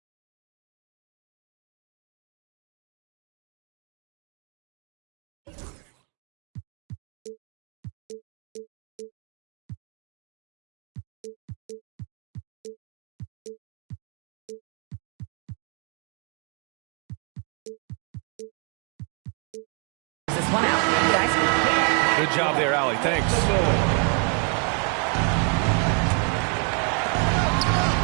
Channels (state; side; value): quieter; left; 36.8 dB